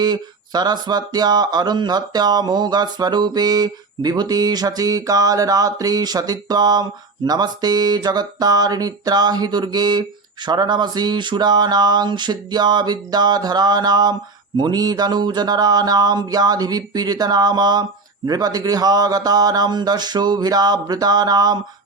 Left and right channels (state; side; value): quieter; left; 3.9 dB